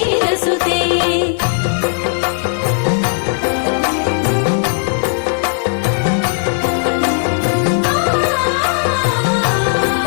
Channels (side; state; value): right; silent; digital silence